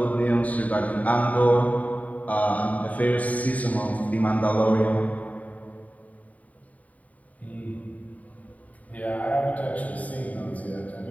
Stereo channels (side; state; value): right; late; 0.071 ms